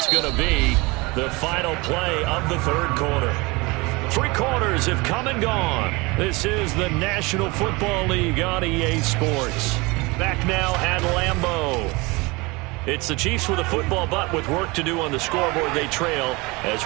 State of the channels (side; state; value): left; quieter; 24.8 dB